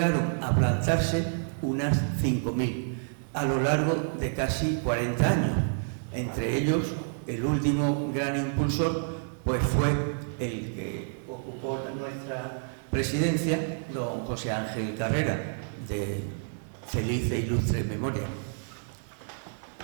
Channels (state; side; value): silent; left; digital silence